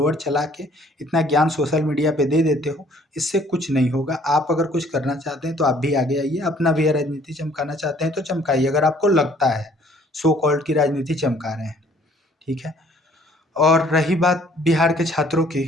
चला के इतना ज्ञान सोशल मीडिया पे दे देते हो, इससे कुछ नहीं होगा। आप अगर कुछ करना चाहते हैं तो आप भी आगे आइए, अपना भी राजनीति चमकाना चाहते हैं तो चमकाइए, अगर आपको लगता है सो कॉल्ड की राजनीति चमका रहे हैं, ठीक है। और रही बात बिहार के छात्रों की,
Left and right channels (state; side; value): normal; both; correlation 0.58